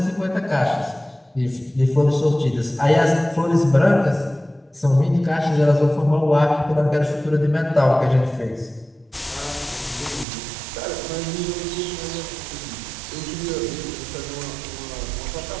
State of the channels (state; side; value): drops out; left; at 10.2 s